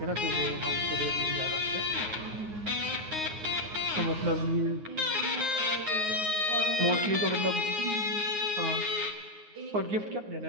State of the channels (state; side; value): late; left; 9.6 ms